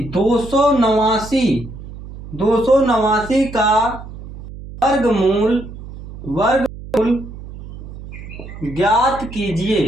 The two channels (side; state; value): right; noise; hum, 13 dB below the sound